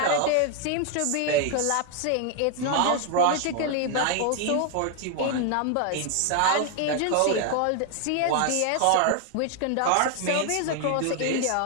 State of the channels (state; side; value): different; both; correlation 0.00